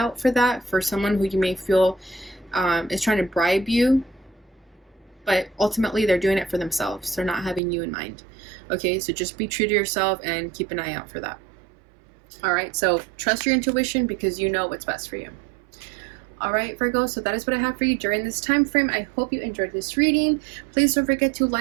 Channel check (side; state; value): left; drops out; at 7.6 s